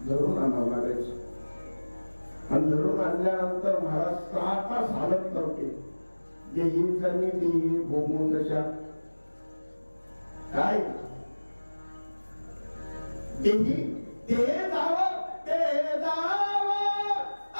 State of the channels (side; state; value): both; inverted; correlation -1.00